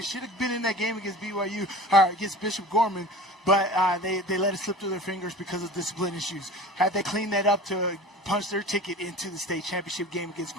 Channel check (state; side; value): normal; both; correlation 0.39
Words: Should have been in that game against BYU, or against Bishop Gorman, but they let it slip through their fingers because of discipline issues. Had they cleaned that up to punch their ticket into the state championship game against